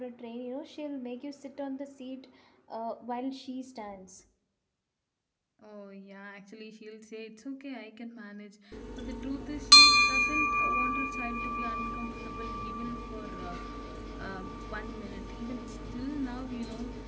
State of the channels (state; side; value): identical; both; correlation 1.00